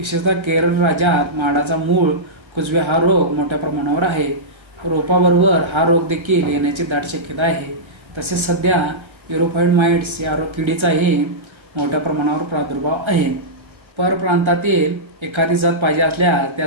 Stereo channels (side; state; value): left; late; 1.4 ms